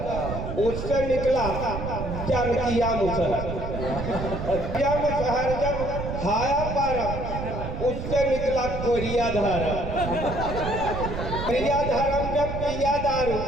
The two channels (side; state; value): right; noise; rumble, 5 dB below the sound